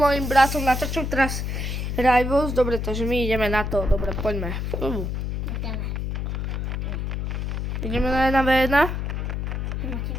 bratom natáčam teraz Rivals. Dobre, takže my ideme na to. Dobre, poďme. Ideme na 1v1?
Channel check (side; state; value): left; noise; hum, 2 dB below the sound